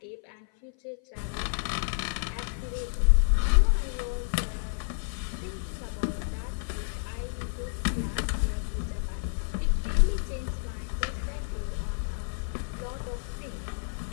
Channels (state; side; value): silent; right; 55 dB below the other